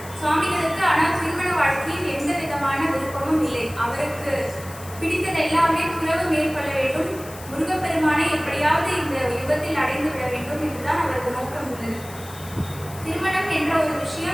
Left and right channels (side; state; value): left; noise; hiss, 17 dB below the sound